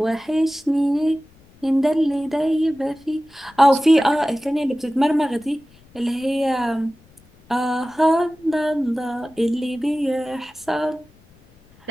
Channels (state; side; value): noise; left; rumble, 29 dB below the sound